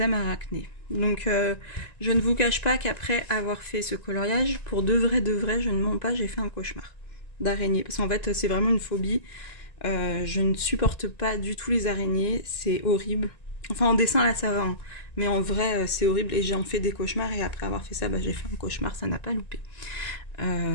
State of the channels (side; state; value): right; late; 1.9 ms